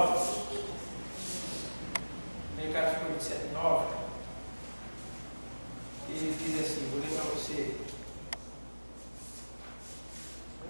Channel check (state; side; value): inverted; both; correlation -1.00